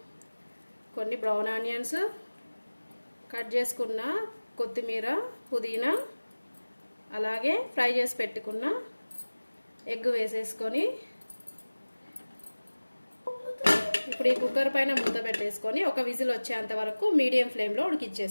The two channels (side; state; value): both; inverted; correlation -1.00